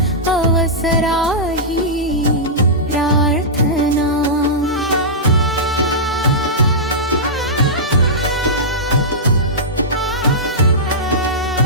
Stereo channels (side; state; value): both; normal; correlation -0.14